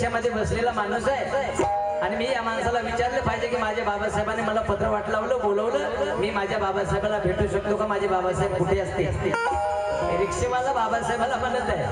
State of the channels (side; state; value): both; identical; correlation 1.00